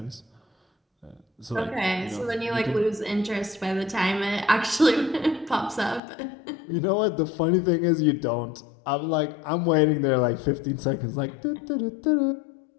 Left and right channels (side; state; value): right; drops out; at 6.0 s